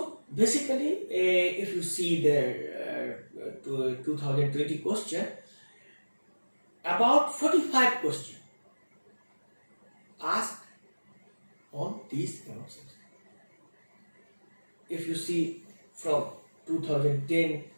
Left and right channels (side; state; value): both; inverted; correlation -1.00